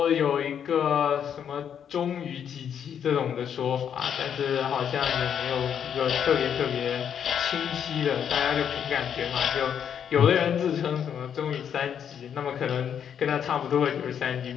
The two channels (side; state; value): right; quieter; 8.4 dB